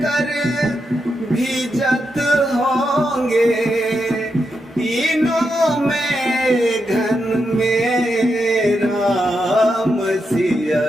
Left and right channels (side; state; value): both; normal; correlation 0.85